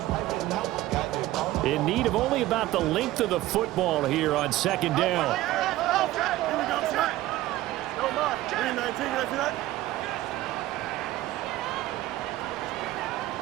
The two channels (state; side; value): quieter; left; 16.1 dB